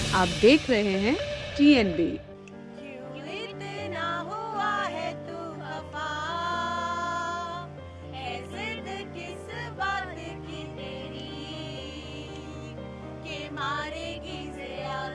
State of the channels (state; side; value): identical; both; correlation 1.00